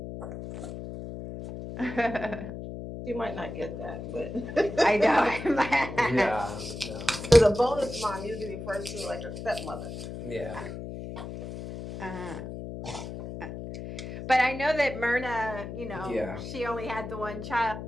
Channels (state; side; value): noise; left; hum, 8 dB below the sound